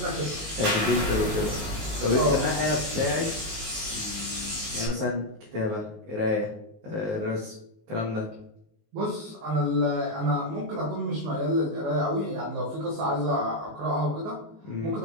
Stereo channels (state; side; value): late; left; 19 ms